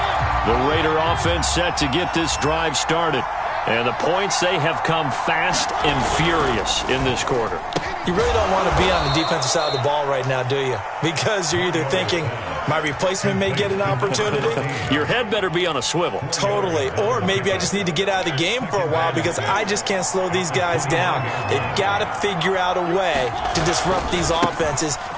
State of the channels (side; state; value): both; identical; correlation 1.00